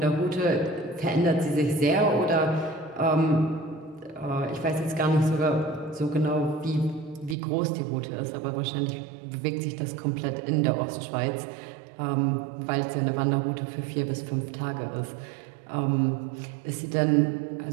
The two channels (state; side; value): drops out; left; at 7.4 s